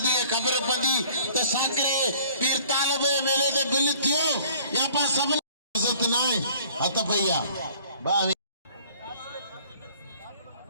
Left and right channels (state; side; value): inverted; both; correlation -0.54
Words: दिए खबर पड़ी तो साकरे पीर तालब मेले दे बिल थियो या पा सब इज्जत ना हथ भैया